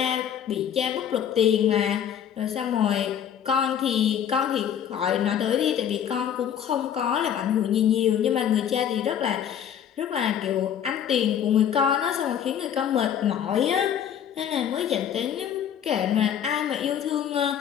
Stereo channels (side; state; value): right; quieter; 9.2 dB